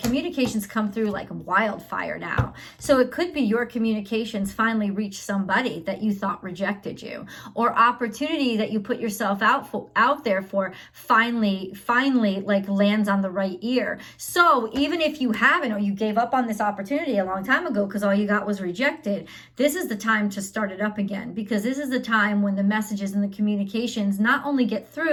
communications come through like wildfire now. So it could be your communications finally reach somebody that you thought rejected you, or opportunity that you put yourself out there for finally like lands on the right ear. So even if you haven't, or you gave up on this opportunity a long time ago because all you got was rejected, this is the time to start it up again, because this is the time when the messages and the communications not only get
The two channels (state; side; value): identical; both; correlation 1.00